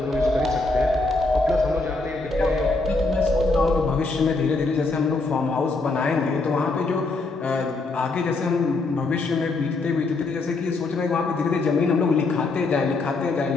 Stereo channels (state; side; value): quieter; right; 3.4 dB